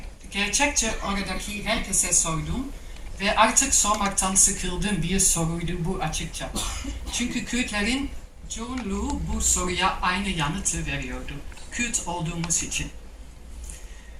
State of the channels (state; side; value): identical; both; correlation 1.00